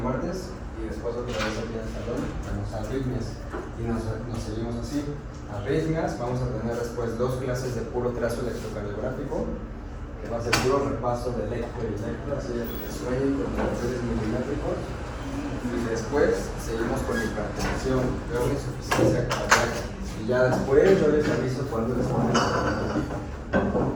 martes, y después otra vez aquí en el salón vemos arritmias, y nos seguimos así. Arritmias, vamos a tener después 2 clases de puro trazo electrocardiográfico, que va a ser puro repaso de electro y electro, así que sueñen con niveles milimétricos, y después seguimos con hipertensión, veo insuficiencia cardíaca, y ya después yo les aviso cuando les ponemos.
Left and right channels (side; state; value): both; identical; correlation 1.00